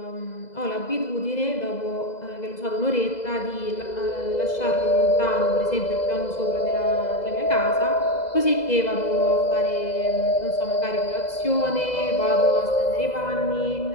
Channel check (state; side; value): late; right; 2.0 ms